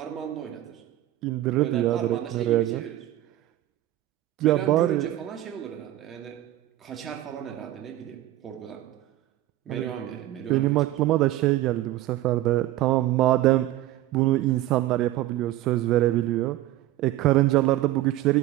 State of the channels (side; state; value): left; quieter; 14.9 dB